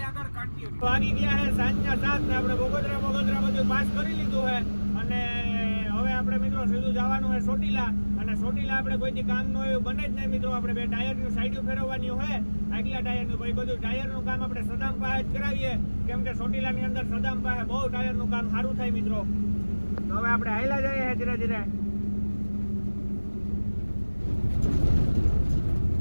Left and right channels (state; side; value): inverted; both; correlation -1.00